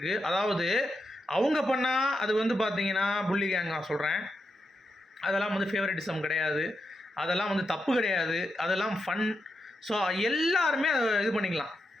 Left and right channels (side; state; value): both; normal; correlation 0.86